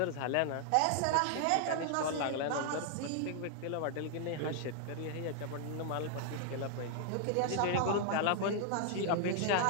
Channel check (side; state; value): both; different; correlation 0.00